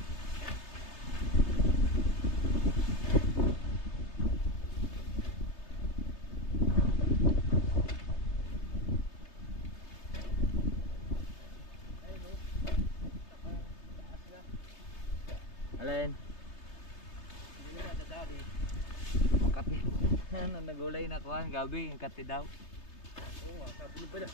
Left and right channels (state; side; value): late; right; 3.3 ms